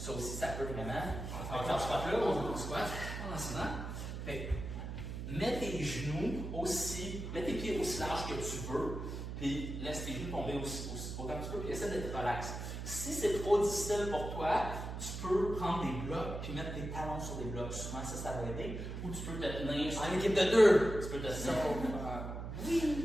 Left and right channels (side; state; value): right; noise; hum, 6 dB below the sound